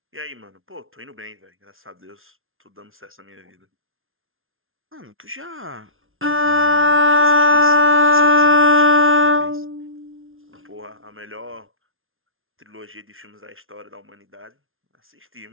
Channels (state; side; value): late; left; 0.60 ms